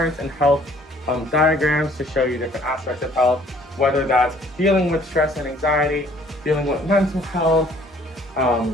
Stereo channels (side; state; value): both; normal; correlation 0.57